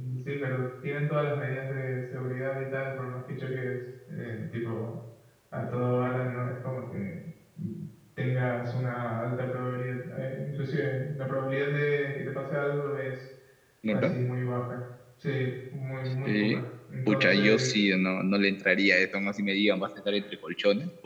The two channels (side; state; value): both; identical; correlation 1.00